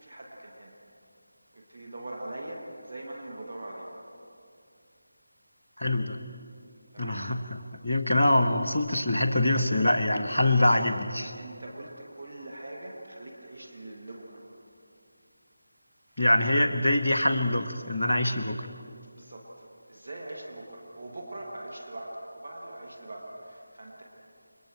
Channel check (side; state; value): both; inverted; correlation -0.91